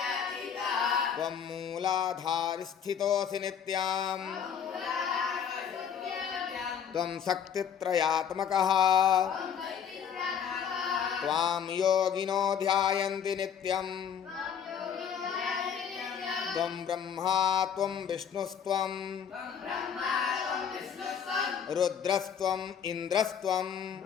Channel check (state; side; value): quieter; right; 8.0 dB